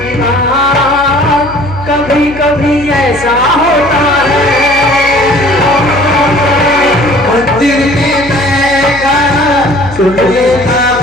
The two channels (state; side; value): noise; left; hum, 15 dB below the sound